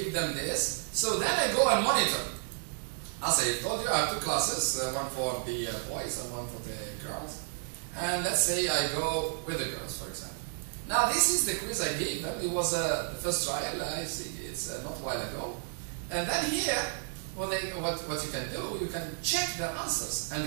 them this, so then I go and monitor. As I told you, I have two classes, one for the boys and one for the girls. And let's say I go with the girls, for example. Now this is the quiz I gave them. It was the first trial. I see it's not a while ago. And then here, what you can do, you can check their answers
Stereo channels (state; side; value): silent; left; digital silence